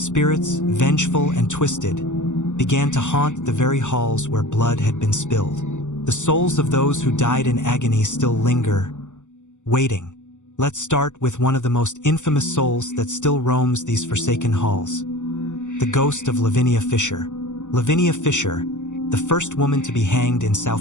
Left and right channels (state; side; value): late; right; 0.85 ms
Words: vengeful and twisted, began to haunt the very halls where blood had been spilled. The souls of those who died in agony still linger, waiting. Let's start with one of the most infamous souls that still roams these forsaken halls. The ghost of Lavinia Fisher. Lavinia Fisher, the first woman to be hanged in